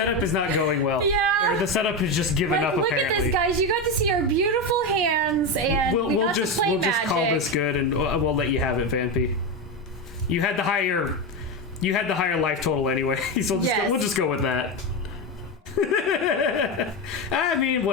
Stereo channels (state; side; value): normal; both; correlation 0.14